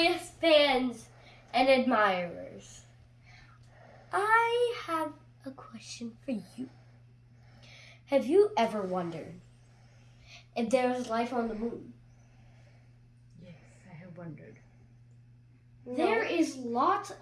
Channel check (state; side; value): identical; both; correlation 1.00